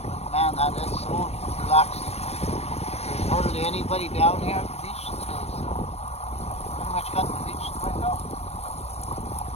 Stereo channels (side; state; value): right; late; 0.30 ms